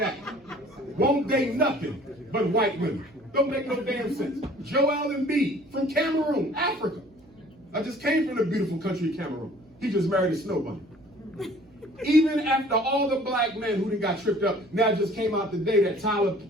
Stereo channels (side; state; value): right; noise; hum, 27 dB below the sound